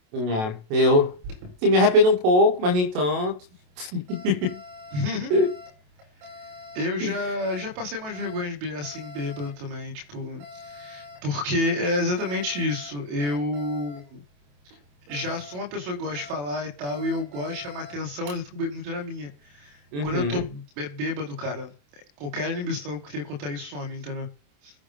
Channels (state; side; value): late; left; 28 ms